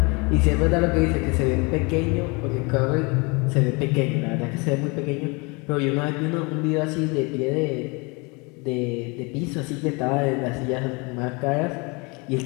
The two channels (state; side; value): quieter; right; 29.0 dB